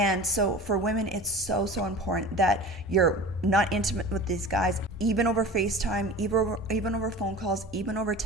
so for women, it's so important that you're not intimate with these guys, even over FaceTime, even over phone calls, even over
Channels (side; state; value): both; normal; correlation 0.36